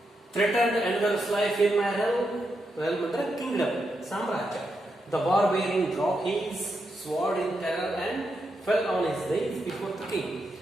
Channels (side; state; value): both; normal; correlation 0.84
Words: Threatened another's life in my realm. Realm ಅಂದ್ರೆ kingdom, ಸಾಮ್ರಾಜ್ಯ. The barbarian dropped his sword in terror and fell on his knees before the king.